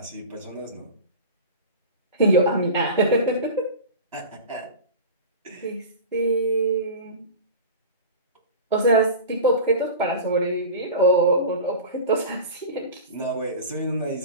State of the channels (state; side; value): inverted; both; correlation -0.32